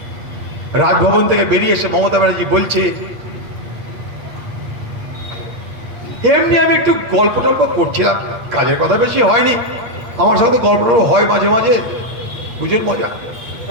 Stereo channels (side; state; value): left; late; 8.6 ms